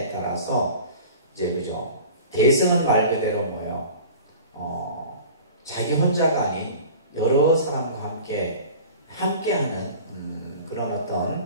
따라서 이제 그죠? 대승은 말 그대로 뭐예요? 자기 혼자가 아닌 여러 사람과 함께하는 그런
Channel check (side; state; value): both; inverted; correlation -0.41